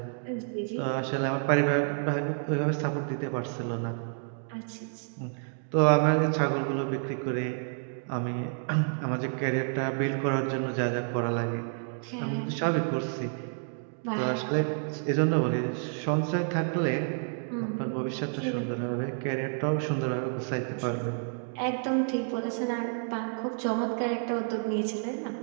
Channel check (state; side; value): silent; left; 57 dB below the other